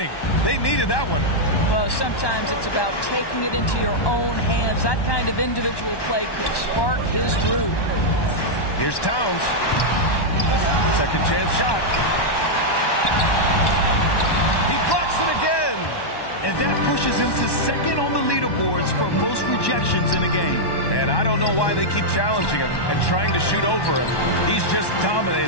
They needed that one. Well, sometimes it's about taking it into your own hands. That kind of individual play could spark his groove. Here's Towns. Second chance shot. He blocks it again. And that pushes him to second on the leaderboards for most rejections in a game. And I don't know why they keep challenging him and trying to shoot over him. He's just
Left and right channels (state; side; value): late; right; 1.1 ms